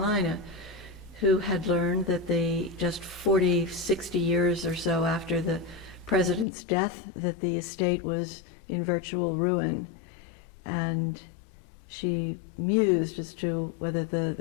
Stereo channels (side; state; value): right; drops out; at 6.5 s